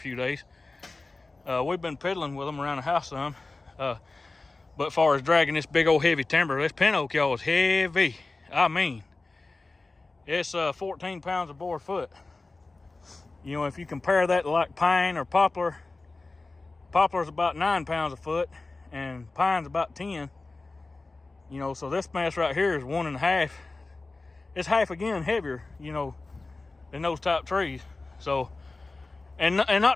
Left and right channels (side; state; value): right; quieter; 3.4 dB